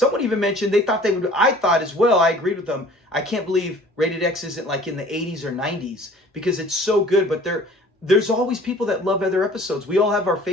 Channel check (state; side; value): normal; both; correlation 0.50